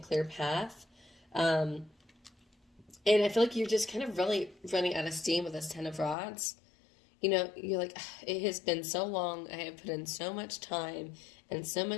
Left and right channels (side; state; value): right; drops out; at 6.2 s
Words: path. And I feel like you're just kind of really running out of steam with this Ten of Rods. You know, you're like, it has been so long. I have put in so much time and so